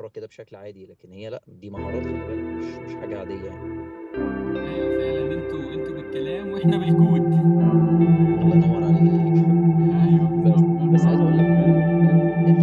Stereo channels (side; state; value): both; identical; correlation 1.00